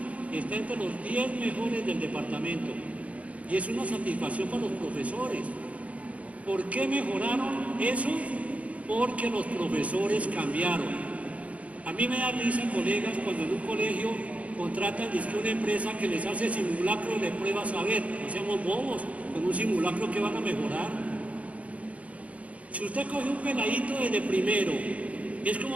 está entre los 10 mejores del departamento. Y es una satisfacción para los profesores. ¿Por qué mejoraron eso? Porque los profesores cambiaron. A mí me da risa, colegas, cuando en un colegio contratan una empresa que les hace simulacros de pruebas saber. No seamos bobos, con un simulacro que van a mejorar. Si usted coge un peladito desde primero, es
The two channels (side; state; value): left; late; 0.066 ms